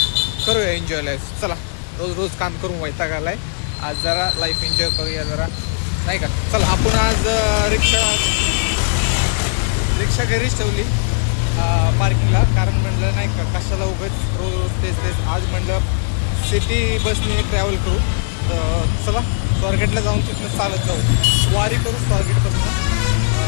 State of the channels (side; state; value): right; silent; digital silence